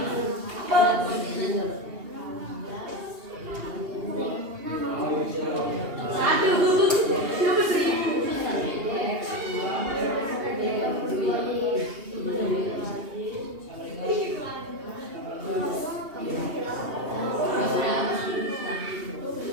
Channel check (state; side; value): late; left; 2.8 ms